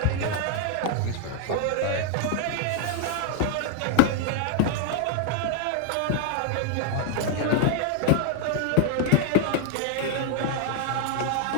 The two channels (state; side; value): different; both; correlation 0.00